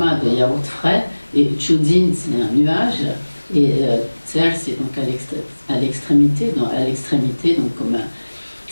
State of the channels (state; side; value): inverted; both; correlation -1.00